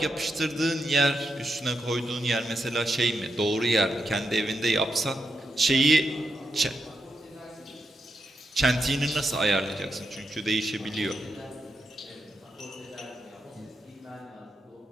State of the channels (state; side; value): normal; both; correlation 0.84